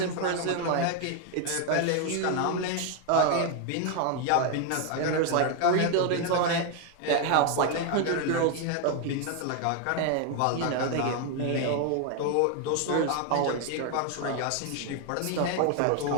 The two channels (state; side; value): different; both; correlation 0.01